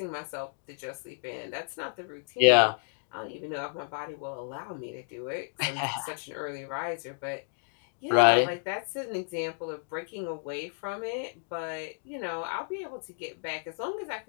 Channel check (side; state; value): right; silent; digital silence